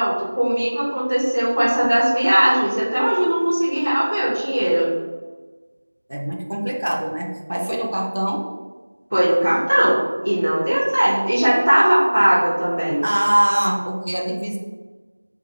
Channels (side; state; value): both; inverted; correlation -1.00